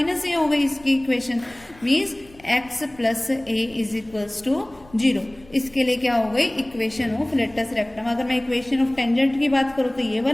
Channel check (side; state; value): left; noise; rumble, 26 dB below the sound